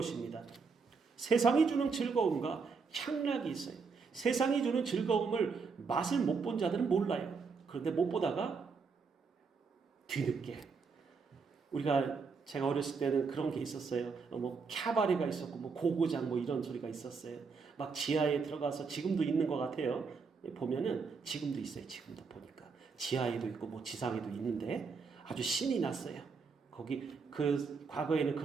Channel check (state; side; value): quieter; left; 5.1 dB